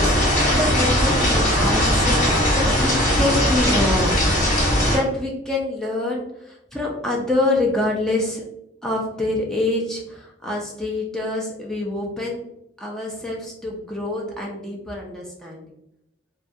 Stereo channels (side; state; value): both; normal; correlation 0.48